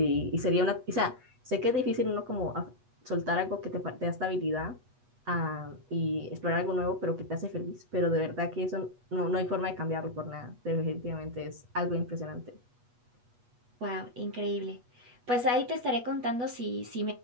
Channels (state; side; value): late; left; 8.3 ms